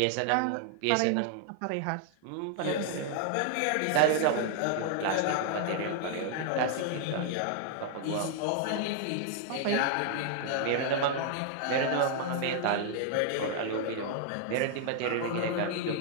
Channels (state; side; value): different; both; correlation 0.00